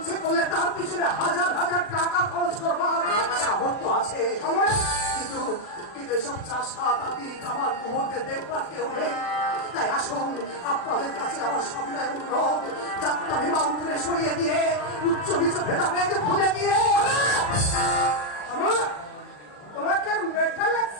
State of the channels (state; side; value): late; right; 40 ms